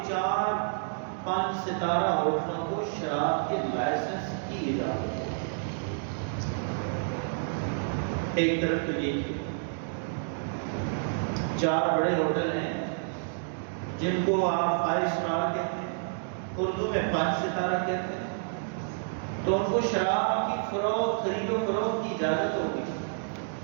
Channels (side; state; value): left; silent; digital silence